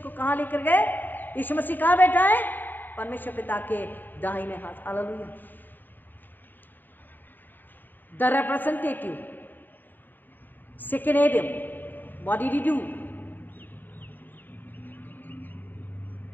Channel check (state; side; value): late; right; 0.090 ms